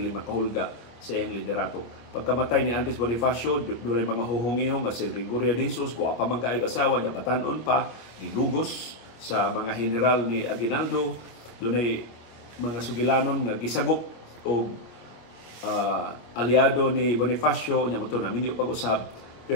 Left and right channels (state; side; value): late; right; 25 ms